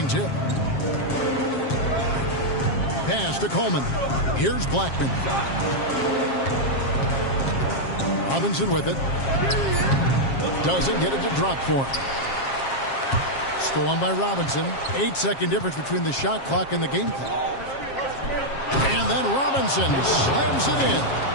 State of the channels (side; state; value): right; late; 7.4 ms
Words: tip. Pass to Coleman. Here's Blackman. Robinson with it. Doesn't get it to drop for him. Stolen by Robinson. 8-second difference between the shot clock and the game clock. And then Robinson slams it in.